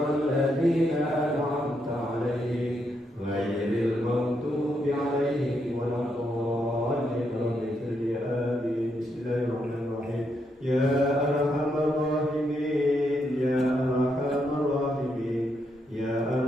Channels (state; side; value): normal; both; correlation 0.79